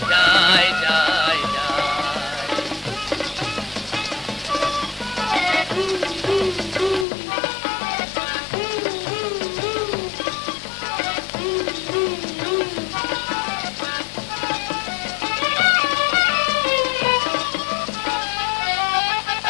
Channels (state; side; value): drops out; right; at 7.1 s